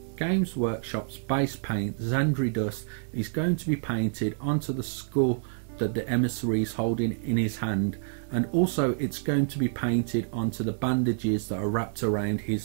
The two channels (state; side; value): silent; left; digital silence